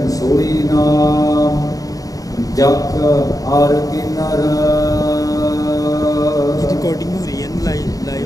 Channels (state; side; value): late; right; 0.17 ms